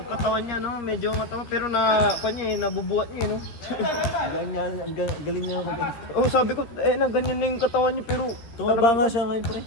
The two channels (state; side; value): late; right; 13 ms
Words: katawan niya, no? Medyo matama pero na, kwan niya eh, nabubuhat niya eh, no? Galing niya mag- Oh, sabi ko, na ganyan na yung katawan niya pero... Tumaba nga siya ngayon, pre.